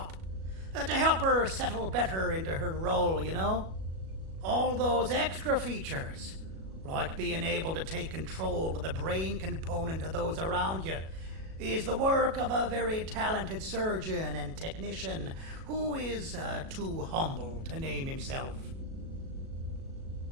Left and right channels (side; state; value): left; late; 37 ms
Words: to help her settle better into her role, you know? All those extra features, like being able to take control of the brain component of those around you, is the work of a very talented surgeon and technician who is too humble to name himself.